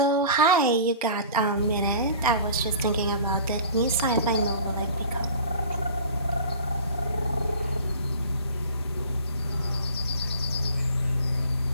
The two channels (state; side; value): inverted; both; correlation -0.43